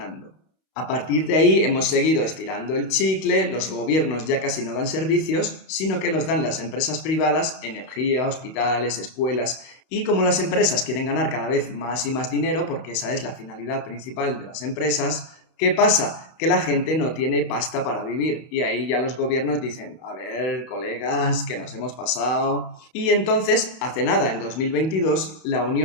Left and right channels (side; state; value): right; late; 31 ms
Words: A partir de ahí hemos seguido estirando el chicle, los gobiernos ya casi no dan servicios, sino que los dan las empresas privadas, energía, hospitales, escuelas, y como las empresas quieren ganar cada vez más y más dinero, porque esa es la finalidad principal de las empresas, ¿qué pasa? Que la gente no tiene pasta para vivir y ahí ya los gobiernos dicen, a ver, colegas, que nos hemos pasado. Y entonces, hace nada, en 2022, la